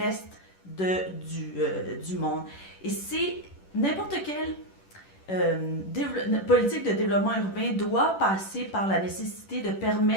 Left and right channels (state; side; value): late; right; 10 ms